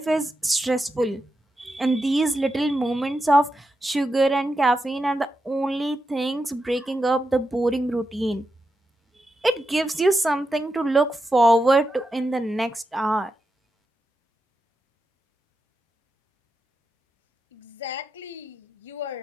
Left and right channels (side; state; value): both; normal; correlation 0.87